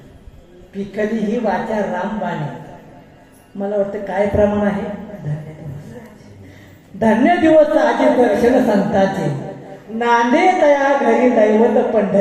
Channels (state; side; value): identical; both; correlation 1.00